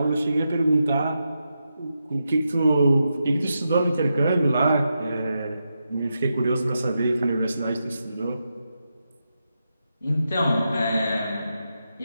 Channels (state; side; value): inverted; both; correlation -0.87